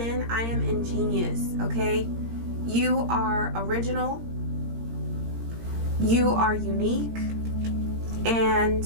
I am ingenious, okay? You are original, you are unique, and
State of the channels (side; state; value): left; late; 17 ms